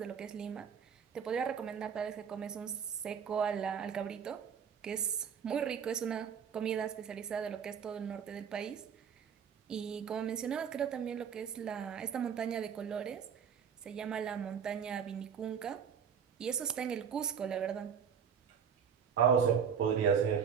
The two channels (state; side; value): quieter; left; 7.4 dB